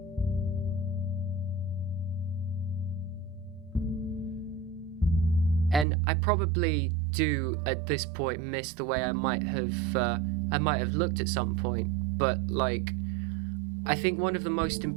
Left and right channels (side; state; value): left; drops out; at 5.9 s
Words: And I probably do at this point miss the way I might have looked at some point, but like I think one of the most